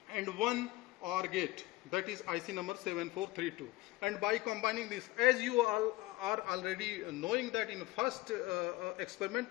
and 1 OR gate, that is IC number 7432. And by combining this, as you all are already knowing that in first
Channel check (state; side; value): quieter; right; 19.6 dB